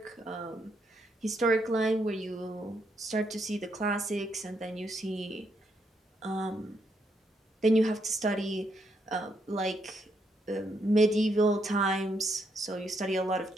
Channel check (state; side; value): normal; both; correlation 0.77